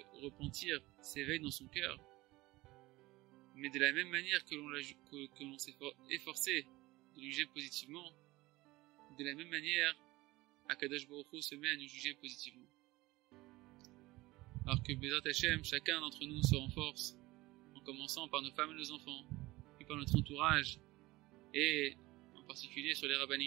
repentir s'éveillent dans son cœur, mais de la même manière que l'on s'est efforcé de le juger positivement, de la même manière, Akadosh Baruch Hu se met à nous juger positivement. Alors que Bezrat Hashem, chacun d'entre nous se renforce, en commençant par nos femmes et nos enfants, puis par notre entourage, et en particulier sur les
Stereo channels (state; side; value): quieter; left; 19.9 dB